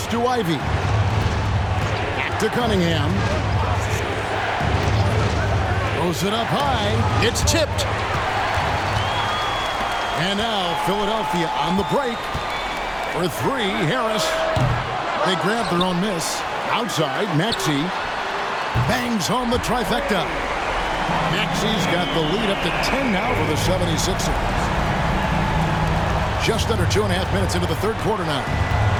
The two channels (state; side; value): identical; both; correlation 1.00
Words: to Ivy. Back to Cunningham. Throws it up high. It's tipped. And now Philadelphia on the break. For 3, Harris. They grab their own miss. Outside, Maxey bangs home the trifecta. Maxey's got the lead up to 10 now for the 76ers. Just under 2.5 minutes into the third quarter now.